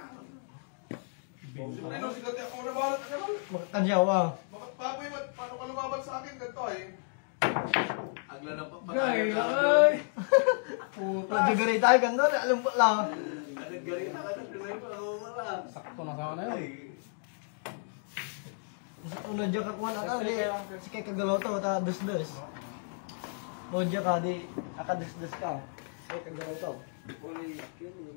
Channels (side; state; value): right; silent; 56 dB below the other